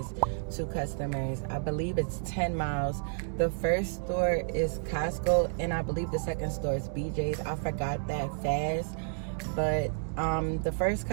2 customers. I believe it's 10 miles. The first store is Costco, and I believe the second store is BJ's. I forgot that fast. But the first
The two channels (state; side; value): silent; left; digital silence